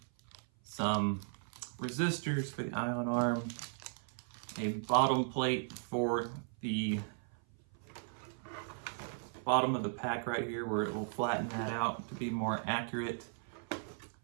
some resistors for the ion arm, a bottom plate for the bottom of the pack right here where it will flatten that out to be more accurate,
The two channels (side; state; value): left; silent; 53 dB below the other